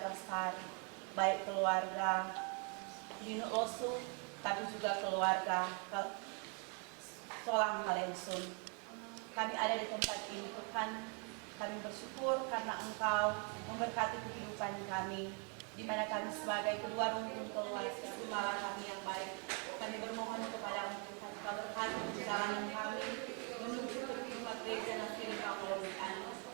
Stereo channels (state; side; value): quieter; left; 37.1 dB